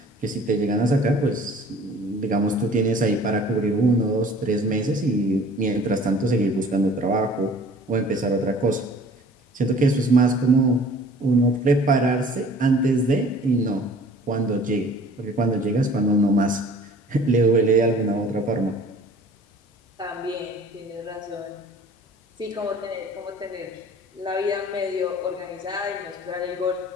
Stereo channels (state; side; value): normal; both; correlation 0.49